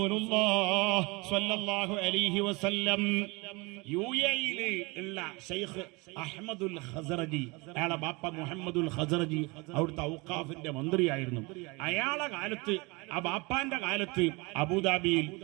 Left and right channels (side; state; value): left; quieter; 26.3 dB